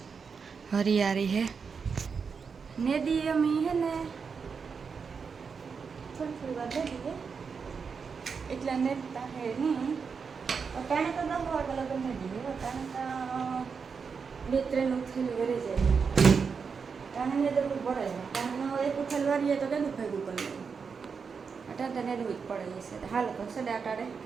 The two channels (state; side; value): quieter; left; 5.7 dB